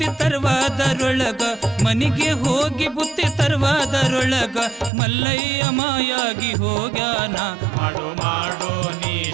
ತರುವಾದರೊಳಗ ಮನಿಗೆ ಹೋಗಿ ಬುತ್ತಿ ತರುವಾದರೊಳಗ ಮಲ್ಲಯ್ಯ ಮಾಯಾಗಿ ಹೋಗ್ಯಾನ. ಮಾಡು ಮಾಡು ನೀ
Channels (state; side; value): drops out; left; at 4.9 s